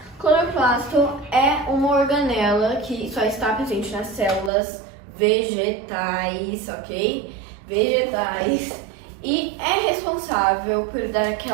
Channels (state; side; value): drops out; left; at 4.5 s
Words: Cloroplasto é uma organela que só está presente nas células vegetais, ok? Vegetais. E é responsável por dar